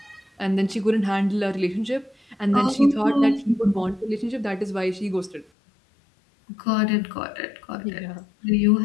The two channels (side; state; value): right; drops out; at 5.5 s